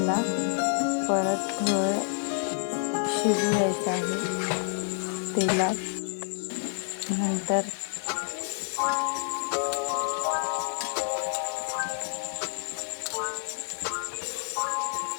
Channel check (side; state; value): right; silent; 59 dB below the other